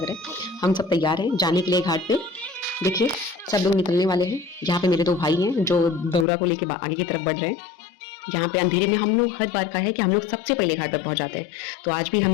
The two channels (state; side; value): drops out; right; at 6.2 s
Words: रहा है। हम सब तैयार हैं जाने के लिए घाट पे। देखिए सब लोग निकलने वाले हैं। यहाँ पे मेरे दो भाई हैं जो दौरा को लेके आगे की तरफ बढ़ रहे हैं। यहाँ पे अंधेरे में हम लोग हर बार का है कि हम लोग सबसे पहले घाट पर पहुंच जाते हैं। तो आज भी